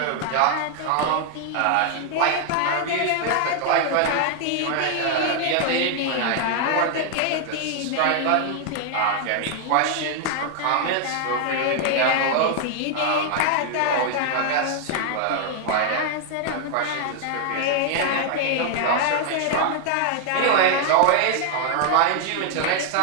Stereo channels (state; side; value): different; both; correlation 0.00